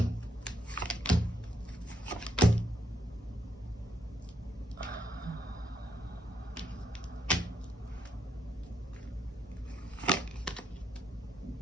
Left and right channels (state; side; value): normal; both; correlation 0.77